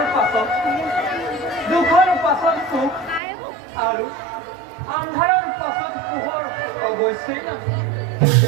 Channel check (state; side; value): drops out; left; at 3.2 s